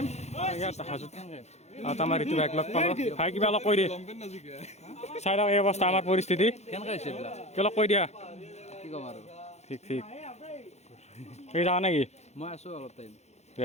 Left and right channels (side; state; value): right; late; 0.32 ms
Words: ইয়াত হাজোত আমাৰ এইটো বাইক লগ পালোঁ ভাই কিবা অলপ কৈ দিয়ে চাই লওক এই অৱস্থা আমাৰ পৰিস্থিতি অলপ কৈ দিয়া ঠিক ঠিক তুমি যাওঁ নেকি মই আছো অলপ টাইম দে